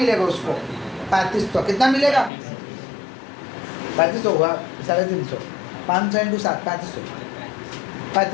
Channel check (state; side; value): drops out; right; at 2.3 s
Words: उसको? 3500। कितना मिलेगा? 3500 हुआ, 350। 500 × 7,